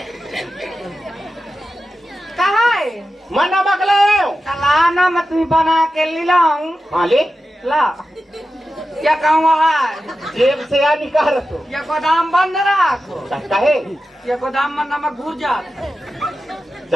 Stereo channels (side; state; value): both; normal; correlation 0.92